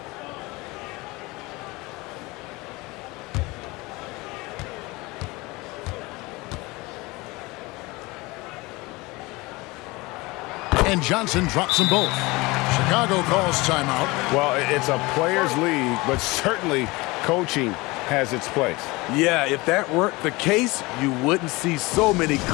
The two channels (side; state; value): right; quieter; 23.0 dB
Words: And Johnson drops them both. Chicago calls timeout. Well, it's a players' league, but certainly coaching has its place. Yeah, if that weren't the case, you wouldn't see so many